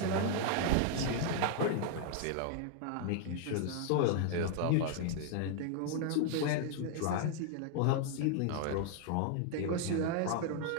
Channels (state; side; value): different; both; correlation 0.00